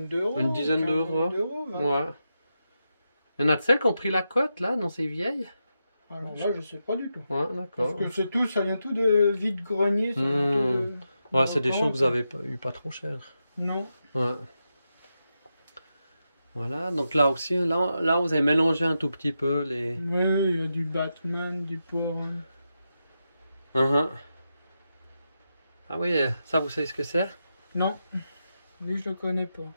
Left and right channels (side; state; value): both; inverted; correlation -0.87